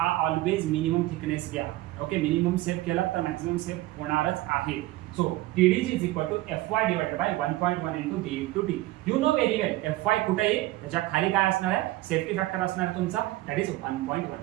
minimum thickness घ्या. ओके, मिनिमम सेव्ह केला तर मॅक्सिमम सेव्ह होणारच आहे. So TDG is equal to Fy divided by 1.1 into D into D. You know very well Fy कुठे आहे? त्याच्या खाली काय असणार आहे? सेफ्टी फॅक्टर असणार आहे तुमचा, दॅट इज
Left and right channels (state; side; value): quieter; left; 17.5 dB